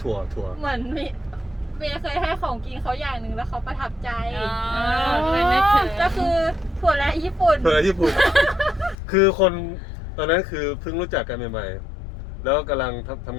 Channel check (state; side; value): drops out; right; at 9.0 s